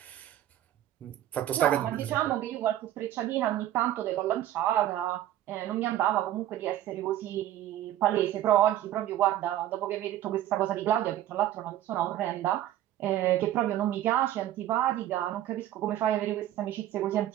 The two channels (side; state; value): left; quieter; 12.9 dB